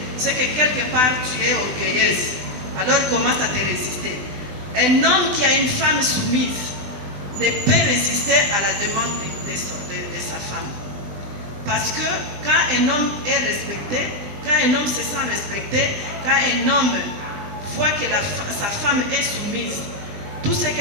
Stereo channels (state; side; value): late; left; 20 ms